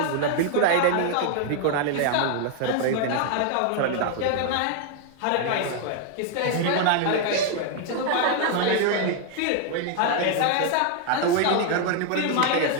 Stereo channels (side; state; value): both; different; correlation 0.00